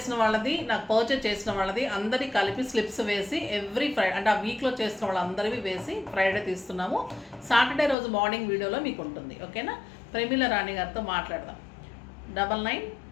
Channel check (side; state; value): right; drops out; at 8.0 s